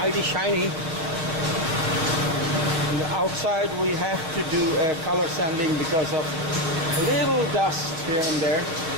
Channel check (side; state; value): left; late; 6.3 ms